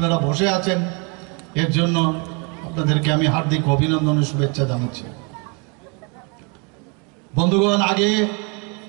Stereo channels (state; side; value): quieter; left; 33.2 dB